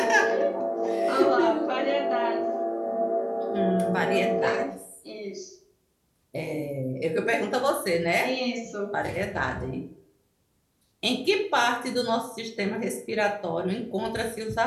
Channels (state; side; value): identical; both; correlation 1.00